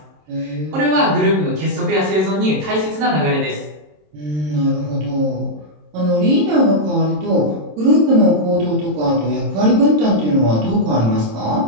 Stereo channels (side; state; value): left; late; 27 ms